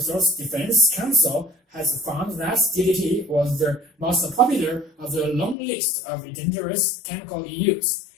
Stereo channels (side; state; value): right; drops out; at 5.6 s